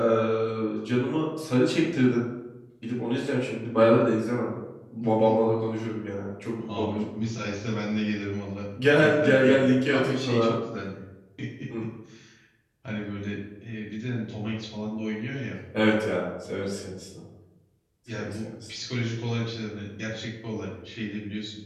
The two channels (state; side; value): identical; both; correlation 1.00